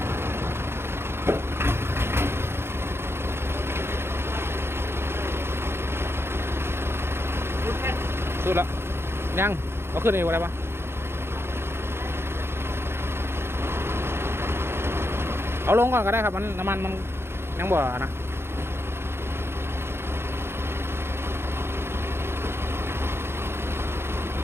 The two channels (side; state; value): left; late; 0.12 ms